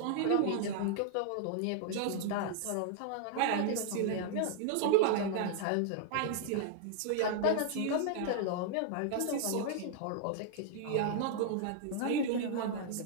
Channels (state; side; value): different; both; correlation -0.01